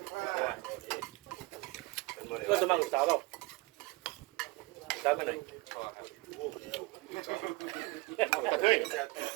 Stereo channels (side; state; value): left; quieter; 23.7 dB